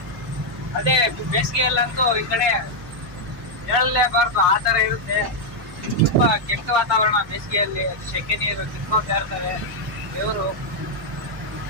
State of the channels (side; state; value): both; normal; correlation -0.02